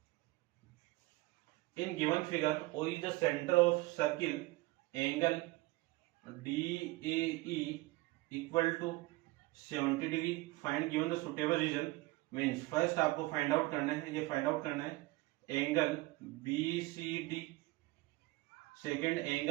in given figure O is the centre of circle angle DAE equal to 70 degree, find given the suitable reason. Means first आपको फाइंड आउट करना है, ये फाइंड आउट करना है angle BCD, second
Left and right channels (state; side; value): quieter; left; 21.2 dB